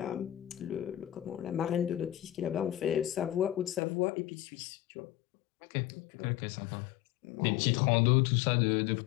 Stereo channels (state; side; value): drops out; right; at 3.8 s